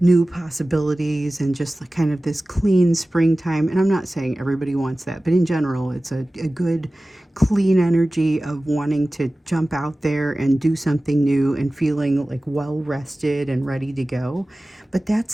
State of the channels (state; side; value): normal; both; correlation 0.97